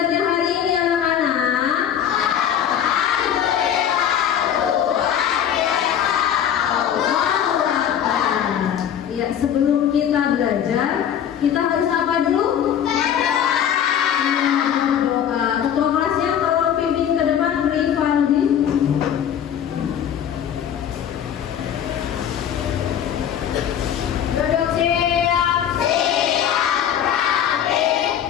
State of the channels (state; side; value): quieter; right; 9.4 dB